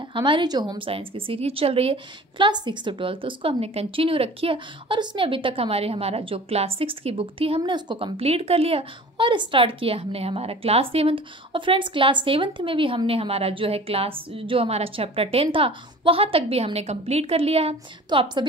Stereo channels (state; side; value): normal; both; correlation 0.43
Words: हमारी जो होम साइंस की सीरीज चल रही है क्लास 6 to 12, तो उसको हमने कंटिन्यू रखी है और उसमें अभी तक हमारा जो क्लास 6 की बुक थी हमने उसको कंप्लीट कर लिया और स्टार्ट किया हमने हमारा क्लास 7। और फ्रेंड्स, क्लास 7 में भी हमने हमारा जो हमारा चैप्टर 10 था वहाँ तक भी हमने कंप्लीट कर लिया है। तो आप